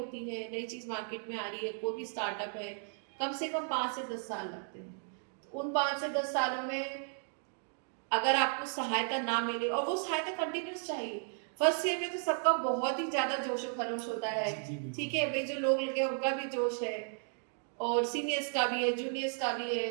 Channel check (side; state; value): left; silent; 55 dB below the other